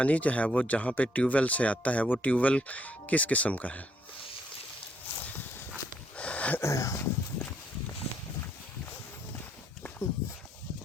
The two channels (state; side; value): normal; both; correlation 0.70